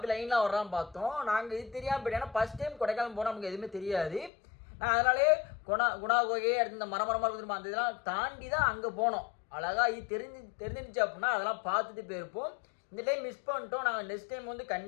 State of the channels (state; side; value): drops out; right; at 4.3 s